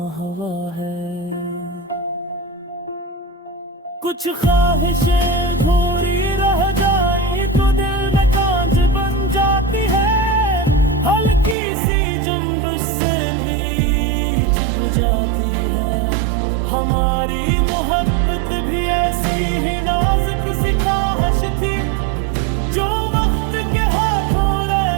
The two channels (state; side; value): drops out; left; at 11.6 s